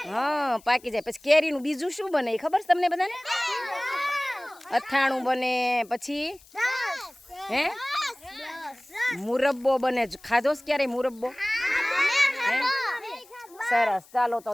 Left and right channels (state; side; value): noise; left; hiss, 26 dB below the sound